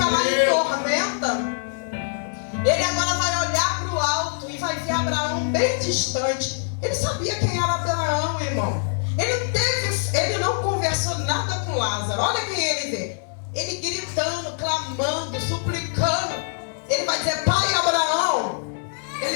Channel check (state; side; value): silent; right; digital silence